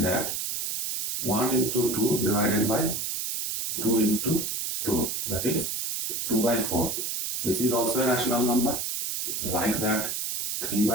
that 1 into 2 divided by 2 into 2, that is 2 by 4. This is also a rational number. Like that 3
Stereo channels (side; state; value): right; noise; hiss, 2 dB below the sound